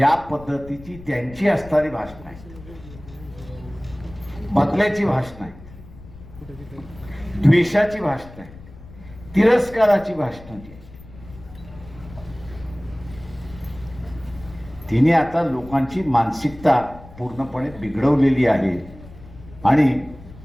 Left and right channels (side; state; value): left; noise; rumble, 18 dB below the sound